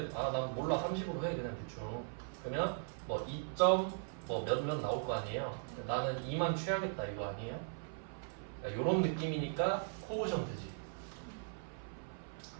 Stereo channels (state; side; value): silent; left; 52 dB below the other